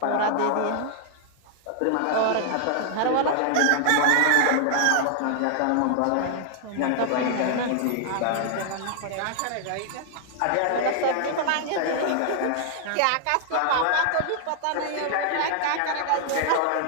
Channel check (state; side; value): different; both; correlation 0.00